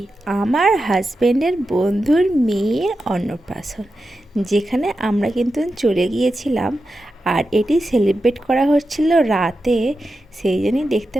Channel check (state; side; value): normal; both; correlation 0.90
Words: আমার হাজব্যান্ডের বন্ধুর মেয়ের অন্নপ্রাশন, যেখানে আমরা কিন্তু চলে গিয়েছিলাম। আর এটি সেলিব্রেট করা হচ্ছিল রাতে, সেই জন্যই দেখতে